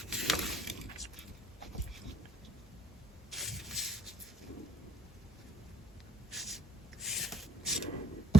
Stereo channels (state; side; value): normal; both; correlation 0.65